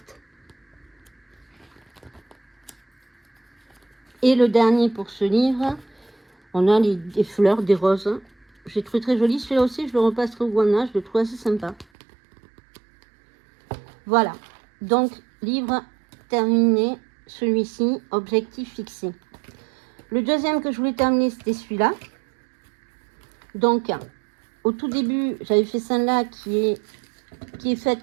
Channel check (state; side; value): drops out; left; at 11.9 s